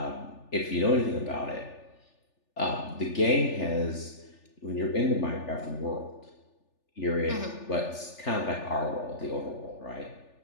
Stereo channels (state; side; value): late; right; 3.4 ms